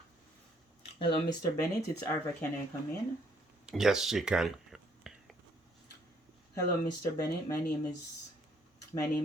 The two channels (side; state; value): both; normal; correlation 0.67